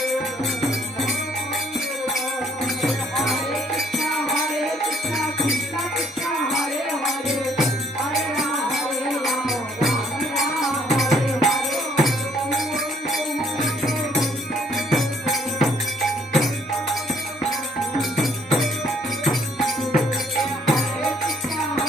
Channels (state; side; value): normal; both; correlation 0.65